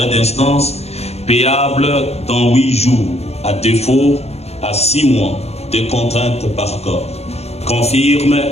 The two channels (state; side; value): late; right; 0.31 ms